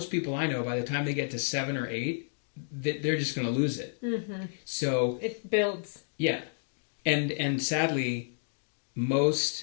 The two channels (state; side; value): silent; right; digital silence